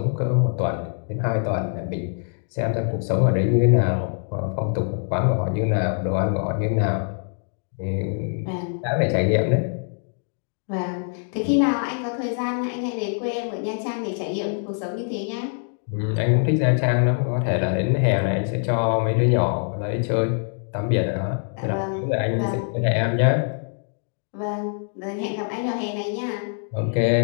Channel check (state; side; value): silent; right; 58 dB below the other